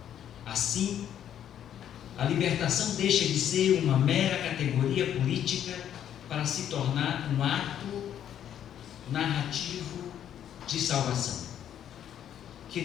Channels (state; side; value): quieter; right; 10.1 dB